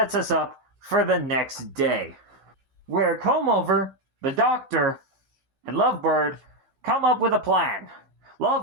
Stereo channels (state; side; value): late; left; 16 ms